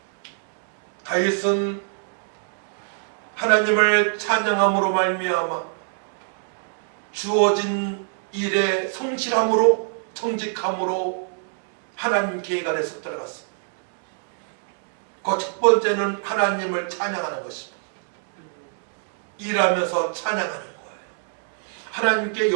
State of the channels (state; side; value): silent; left; digital silence